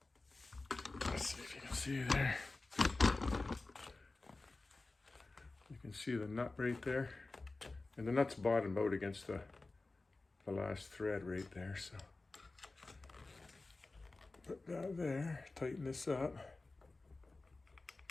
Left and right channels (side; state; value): right; quieter; 3.4 dB